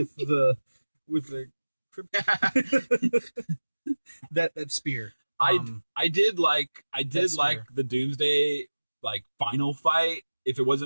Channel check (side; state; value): both; inverted; correlation -1.00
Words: the that spear. I did like the Doomsday final fight. If it